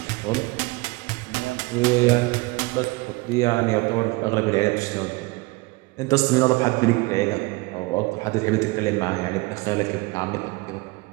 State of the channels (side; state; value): left; quieter; 23.8 dB